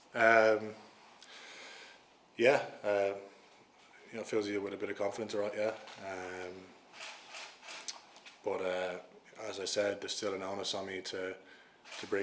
Yeah, it fills you with a bit of confidence, right? Yeah. But as I said, there's still an onus on me to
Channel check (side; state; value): both; identical; correlation 1.00